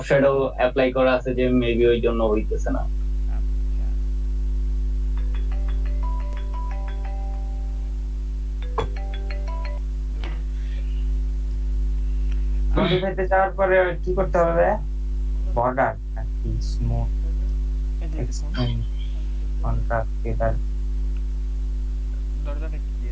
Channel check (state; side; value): identical; both; correlation 1.00